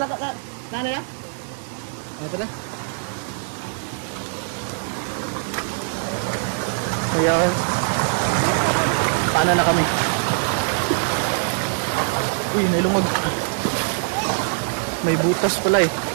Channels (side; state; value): left; silent; digital silence